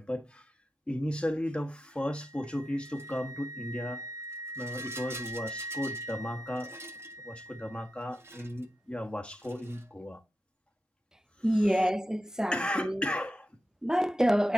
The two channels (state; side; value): normal; both; correlation 0.91